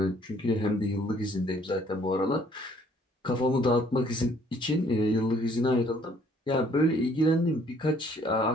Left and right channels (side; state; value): both; normal; correlation 0.61